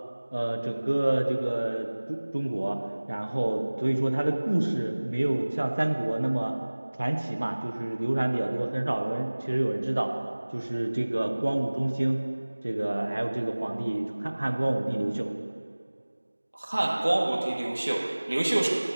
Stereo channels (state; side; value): inverted; both; correlation -1.00